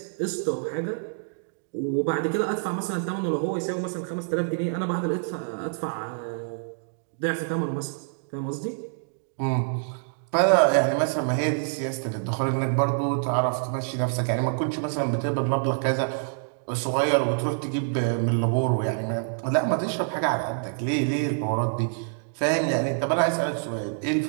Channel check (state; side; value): silent; left; digital silence